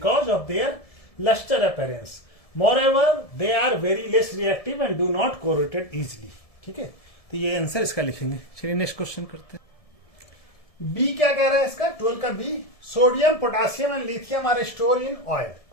of their lustre appearance. Moreover they are very less reactive and do not corrode easily। ठीक है, तो ये आंसर इसका लिखेंगे। चलिए नेक्स्ट क्वेश्चन करते हैं। बी क्या कह रहा है इसका? 12 का B, sodium, potassium and lithium are store in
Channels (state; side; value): late; right; 1.7 ms